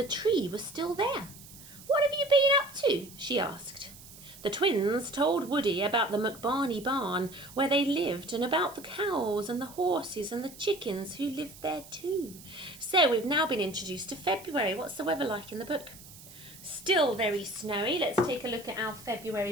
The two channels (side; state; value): right; noise; hiss, 18 dB below the sound